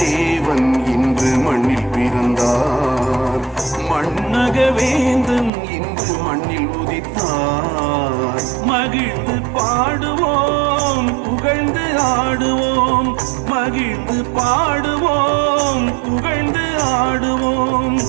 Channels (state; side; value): drops out; left; at 5.5 s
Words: தேவன் இன்று மண்ணில் பிறந்தார், மண்ணக வேந்தன் இன்று மண்ணில் உதித்தார். மகிழ்ந்து பாடுவோம், புகழ்ந்து ஆடுவோம், மகிழ்ந்து பாடுவோம், புகழ்ந்து ஆடுவோம்.